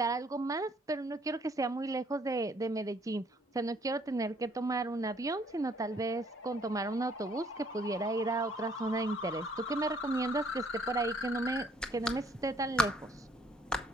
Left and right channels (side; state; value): both; normal; correlation 0.63